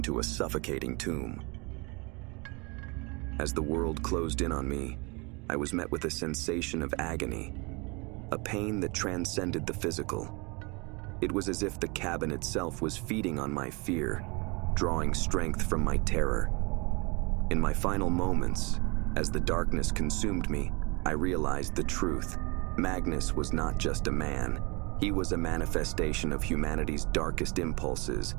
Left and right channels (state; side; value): quieter; left; 28.7 dB